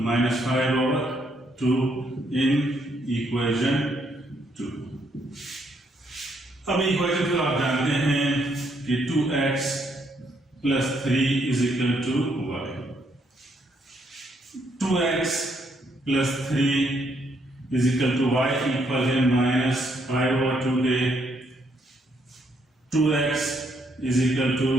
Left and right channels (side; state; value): both; normal; correlation 0.73